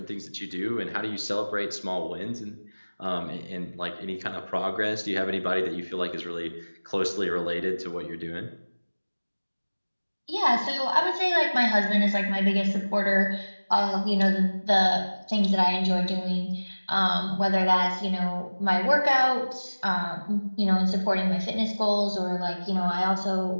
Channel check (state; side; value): inverted; both; correlation -1.00